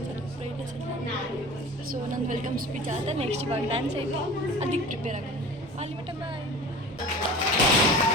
ಬ್ರೈಟ್ನೆಸ್. ಸೊ ನನ್ನ ವೆಲ್ಕಮ್ ಸ್ಪೀಚ್ ಆದ ನೆಕ್ಸ್ಟ್ ಇವಾಗ ಡ್ಯಾನ್ಸ್ ಐತಿ, ಅದಕ್ಕೆ ಪ್ರಿಪೇರ್ ಆಗೋದು. ಅಲ್ಲಿ ಮಟ್ಟ ಬಾಯ್.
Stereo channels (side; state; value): both; normal; correlation 0.39